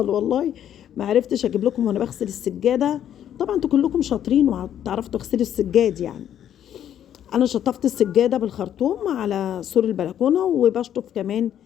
والله ما عرفتش اجيب لكم وانا بغسل السجاده. طبعا انتوا كلكم شاطرين وهتعرفوا تغسلوا السجاد يعني. انا شطفت السجاده بالخرطوم على سور البلكونه، وبشطف كمان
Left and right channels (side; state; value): right; quieter; 10.3 dB